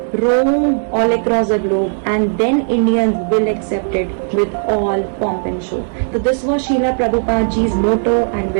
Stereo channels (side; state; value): left; silent; digital silence